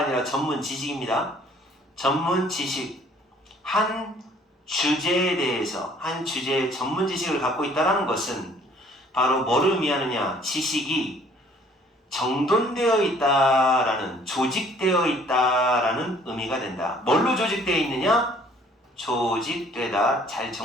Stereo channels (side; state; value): both; normal; correlation 0.57